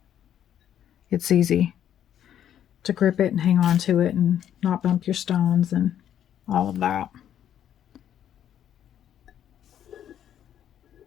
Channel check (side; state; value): right; quieter; 10.2 dB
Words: It's easy to grip it and hang on to it and not bump your stones and all of that.